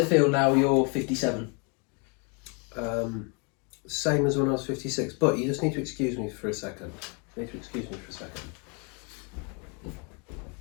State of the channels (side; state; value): right; quieter; 34.7 dB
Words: feel now you're 57? Same as when I was 56, but you just need to excuse me for a second.